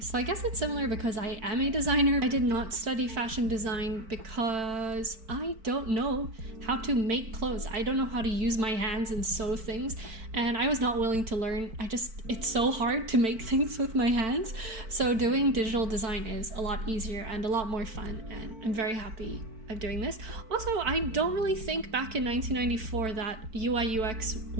So I guess it's similar because I am a designer. I did not study fashion design because I don't know how to make clothes. I don't know how to use my hands and sew things, and I was not willing to learn. It's so hard to make things with my hands. So doing digital design is a lot easier and a lot more fun, and I'm very happy of doing this. Also, I don't really think back in 1994 that UI UX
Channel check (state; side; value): late; left; 4.5 ms